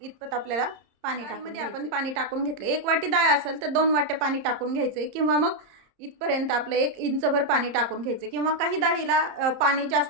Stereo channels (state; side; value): late; left; 30 ms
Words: इतपत आपल्याला पाणी टाकून आपण पाणी टाकून घेतलं। 1 वाटी डाळ असेल तर 2 वाट्या पाणी टाकून घ्यायचंय, किंवा मग इथपर्यंत आपलं 1 इंचभर पाणी टाकून घ्यायचं, किंवा काही डाळीला पाणी